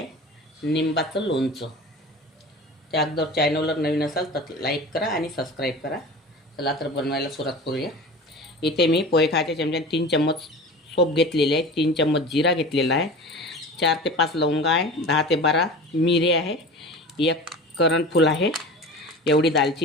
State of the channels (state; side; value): normal; both; correlation 0.35